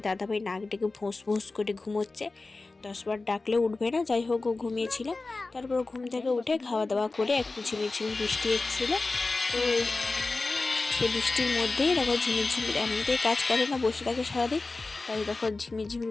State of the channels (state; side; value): quieter; right; 3.5 dB